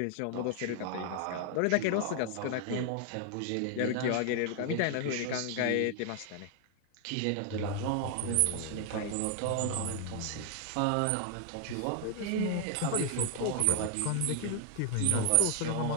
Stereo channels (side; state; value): both; different; correlation 0.00